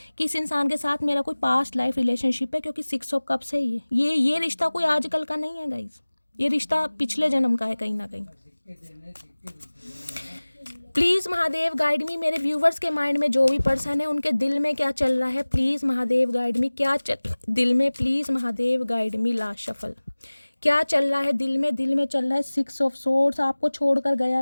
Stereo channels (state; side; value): inverted; both; correlation -1.00